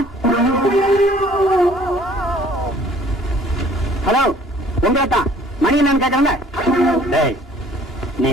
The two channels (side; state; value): both; normal; correlation 0.55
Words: Hello உங்கதான் மணி என்னன்னு கேட்கறாங்க. நீ